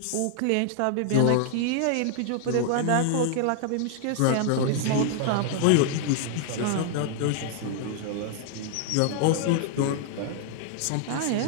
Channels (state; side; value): different; both; correlation 0.00